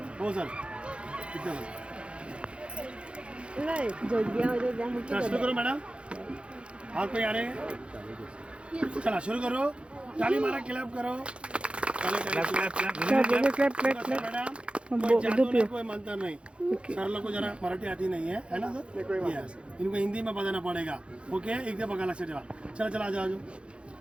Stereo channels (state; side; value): late; left; 0.058 ms